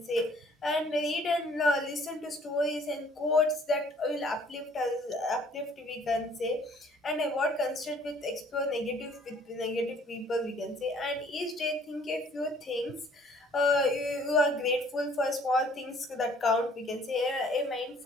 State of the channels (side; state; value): both; normal; correlation 0.57